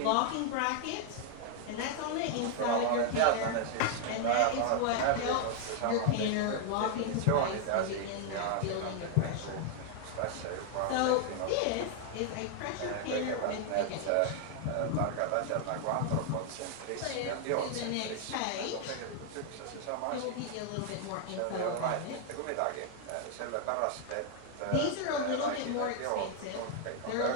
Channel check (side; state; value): both; different; correlation 0.00